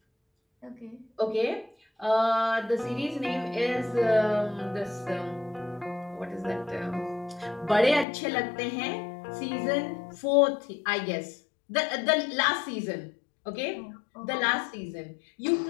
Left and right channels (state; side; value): drops out; right; at 8.1 s